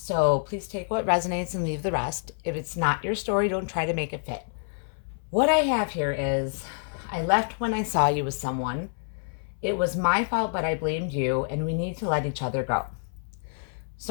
so please take what resonates and leave the rest. If it's not your story, don't try to make it fit. What I have here is, I left when I saw you with someone. It was my fault, but I blamed you, and we need to let each other go.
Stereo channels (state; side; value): silent; right; 60 dB below the other